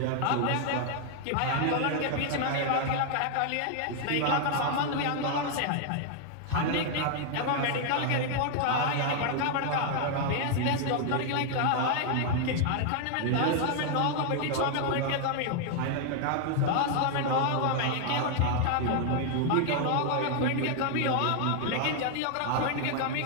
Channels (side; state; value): both; different; correlation 0.00